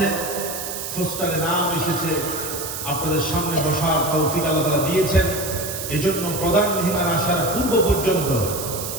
পোস্টারে নাম এসেছে, আপনাদের সামনে বসার তৌফিক আল্লাহ তাআলা দিয়েছেন, এজন্য প্রধান মেহমান আসার পূর্ব পর্যন্ত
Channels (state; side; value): noise; right; hiss, 6 dB below the sound